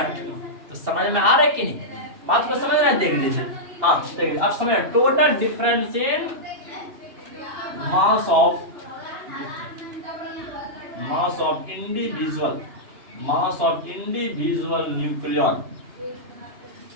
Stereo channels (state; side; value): late; left; 2.7 ms